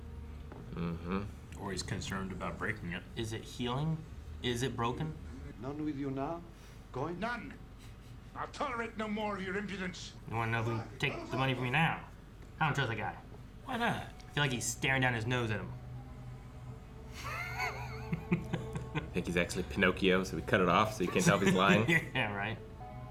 Mm-hmm. Or he's concerned about breaking it. Is it healing? Is it broken? None with you now? Going? None. I'll tolerate no more of your impudence. You want to know if we can take the money from you now? I don't trust that guy. Why not? I feel like he's staring down his nose at him. I think he's actually Pinocchio, so we cut it off so you can't tell if he's lying. Yeah, right.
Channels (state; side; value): identical; both; correlation 1.00